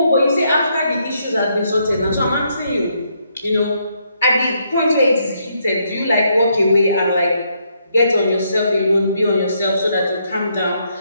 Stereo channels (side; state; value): both; inverted; correlation -0.75